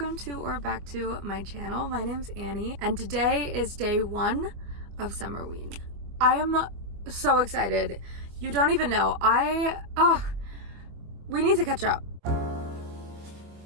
to or back to my channel. My name's Annie and today is day 1 of SUMMERWEEN. I am so excited. You don't even know. We need to catch up.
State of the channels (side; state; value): left; late; 24 ms